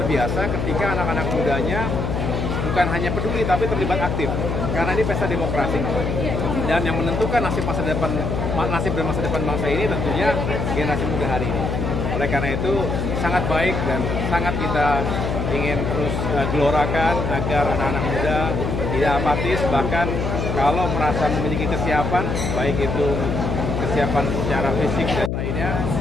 biasa ketika anak-anak mudanya bukan hanya peduli tapi terlibat aktif. Karena ini pesta demokrasi dan yang menentukan nasib dan masa depan bangsa ini tentunya generasi muda hari ini. Oleh karena itu sangat baik dan sangat kita ingin terus gelorakan agar anak-anak muda tidak apatis, bahkan kalau merasa memiliki kesiapan, baik itu kesiapan secara fisik dan lainnya,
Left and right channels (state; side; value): noise; left; hum, 1 dB below the sound